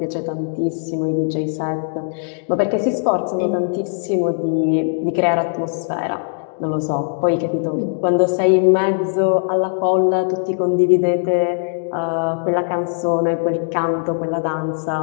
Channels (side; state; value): right; silent; digital silence